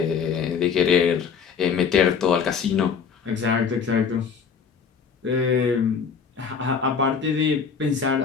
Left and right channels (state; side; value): quieter; right; 6.3 dB